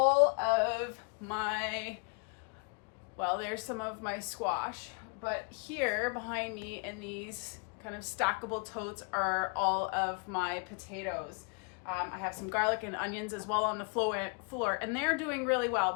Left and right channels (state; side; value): quieter; right; 37.9 dB